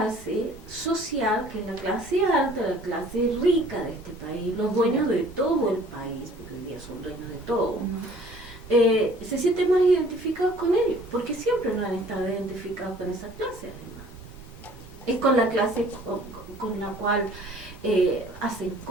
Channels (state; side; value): normal; both; correlation 0.53